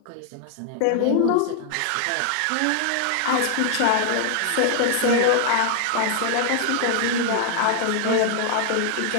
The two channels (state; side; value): different; both; correlation 0.00